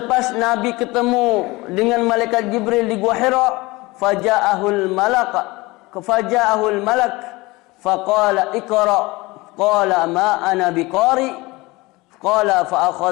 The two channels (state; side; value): quieter; right; 22.3 dB